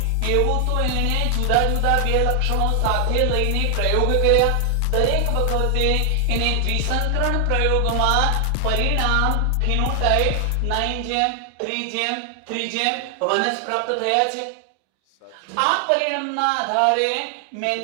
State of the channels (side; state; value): both; different; correlation 0.00